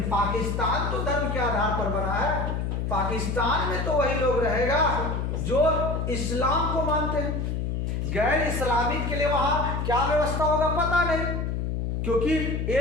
पाकिस्तान तो धर्म के आधार पर बना है, पाकिस्तान में तो वही लोग रहेगा जो इस्लाम को मानते हैं। गैर इस्लामिक के लिए वहां क्या व्यवस्था होगा पता नहीं, क्योंकि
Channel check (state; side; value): noise; left; hum, 1 dB below the sound